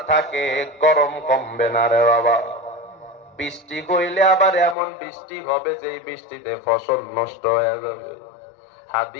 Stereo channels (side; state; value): right; drops out; at 4.8 s